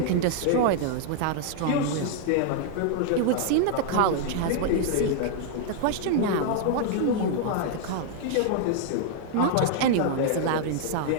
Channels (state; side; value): different; both; correlation -0.01